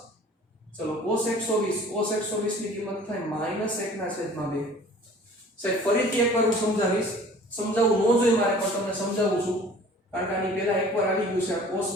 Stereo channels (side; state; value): both; normal; correlation 0.48